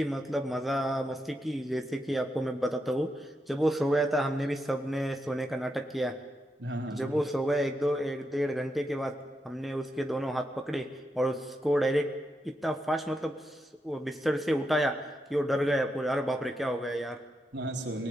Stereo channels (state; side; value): normal; both; correlation 0.84